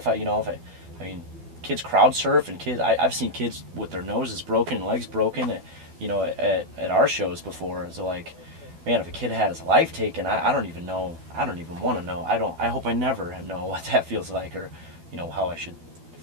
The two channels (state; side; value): late; left; 12 ms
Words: I mean, kids crowd surf, and I've seen kids with their noses broken and legs broken at our shows before. So like, man, if a kid had his life taken, I don't even know. I don't even want to know. I hope I never know what that feels like, or how I should